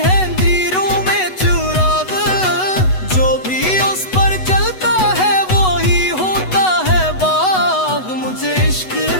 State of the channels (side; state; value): right; late; 8.0 ms